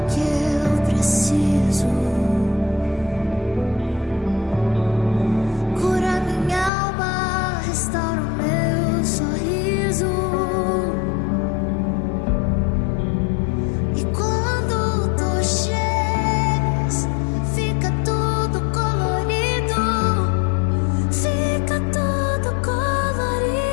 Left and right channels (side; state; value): right; drops out; at 6.7 s